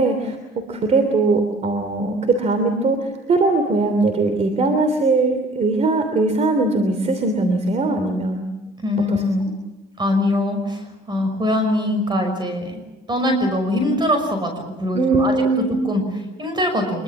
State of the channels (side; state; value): both; normal; correlation 0.53